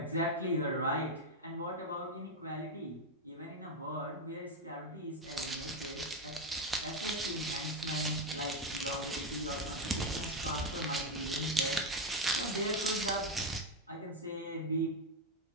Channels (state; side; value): normal; both; correlation 0.08